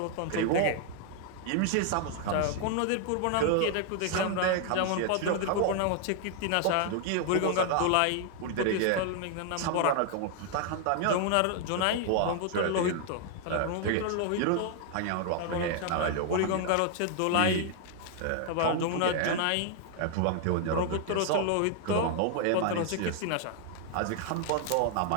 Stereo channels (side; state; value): both; different; correlation 0.00